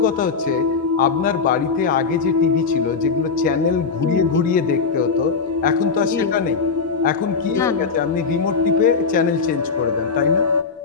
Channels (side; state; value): right; quieter; 5.1 dB